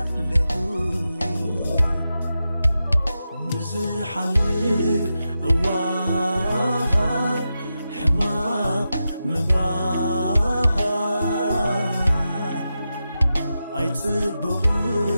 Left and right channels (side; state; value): both; inverted; correlation -0.90